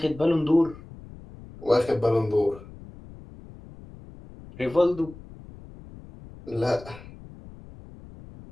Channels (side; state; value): left; noise; rumble, 18 dB below the sound